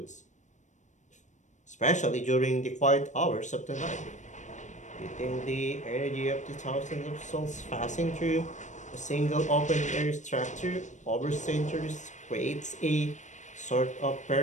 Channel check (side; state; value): right; late; 0.35 ms